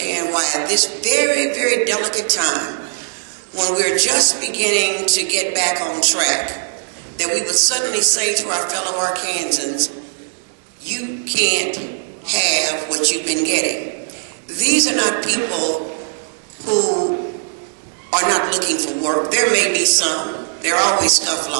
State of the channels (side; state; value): left; silent; digital silence